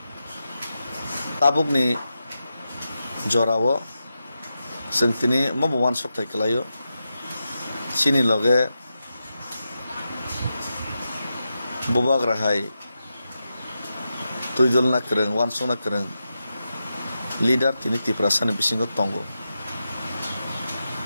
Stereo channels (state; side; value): inverted; both; correlation -0.89